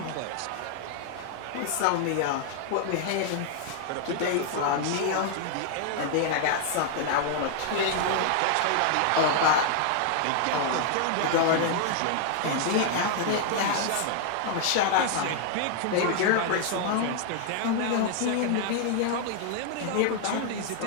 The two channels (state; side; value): different; both; correlation 0.00